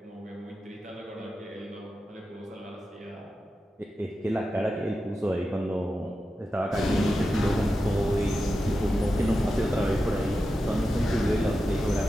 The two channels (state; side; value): normal; both; correlation 0.91